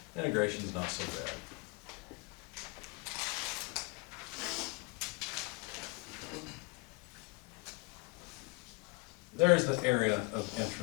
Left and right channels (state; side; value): quieter; right; 28.6 dB